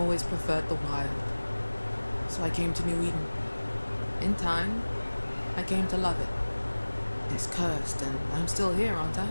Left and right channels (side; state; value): both; inverted; correlation -1.00